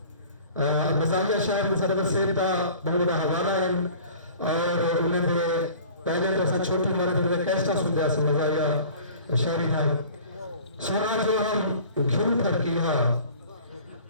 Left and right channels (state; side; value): inverted; both; correlation -0.46